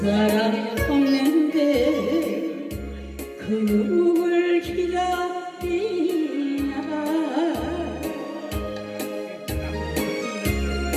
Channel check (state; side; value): identical; both; correlation 1.00